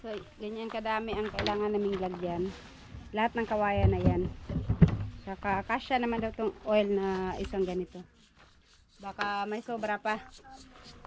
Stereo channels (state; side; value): identical; both; correlation 1.00